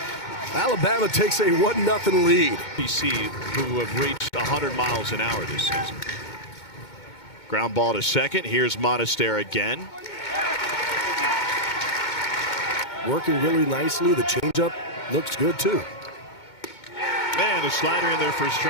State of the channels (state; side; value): late; right; 2.2 ms